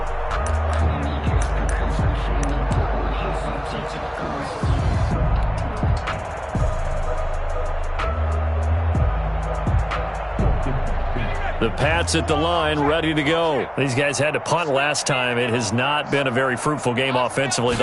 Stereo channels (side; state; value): both; identical; correlation 1.00